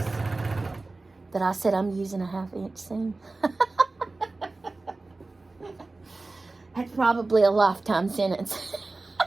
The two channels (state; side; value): quieter; left; 3.3 dB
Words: that I said I'm using a 1/2 inch seam. That's probably a lifetime sentence.